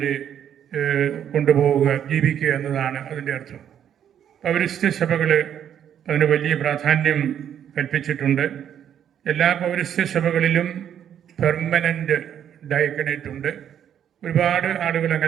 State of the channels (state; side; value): quieter; left; 9.5 dB